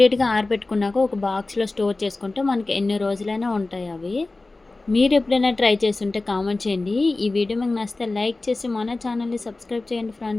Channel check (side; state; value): right; quieter; 3.2 dB